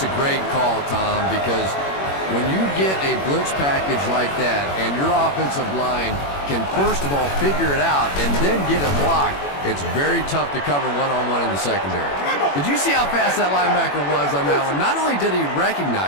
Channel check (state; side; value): late; right; 21 ms